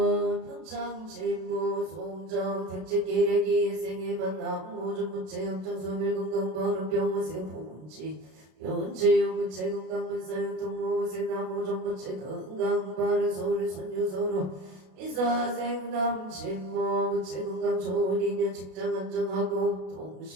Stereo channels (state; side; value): late; left; 32 ms